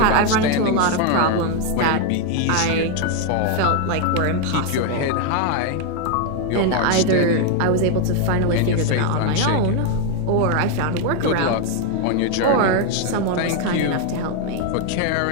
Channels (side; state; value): both; different; correlation 0.01